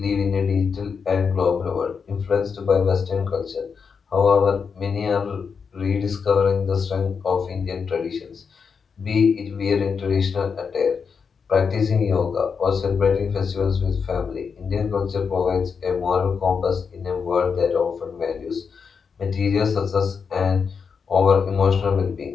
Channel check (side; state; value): right; quieter; 5.9 dB